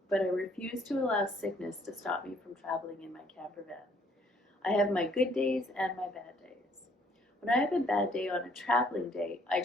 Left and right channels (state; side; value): normal; both; correlation 0.63